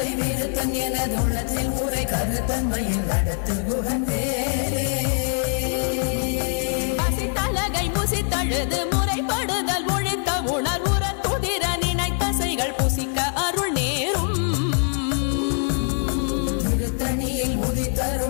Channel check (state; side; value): silent; right; 56 dB below the other